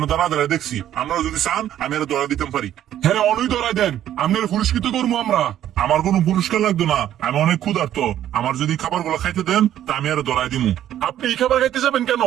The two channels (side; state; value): left; quieter; 11.6 dB